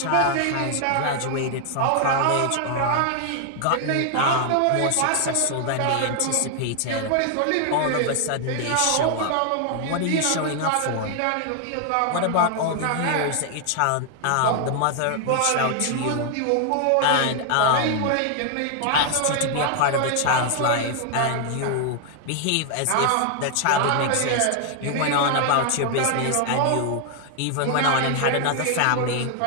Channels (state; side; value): different; both; correlation 0.00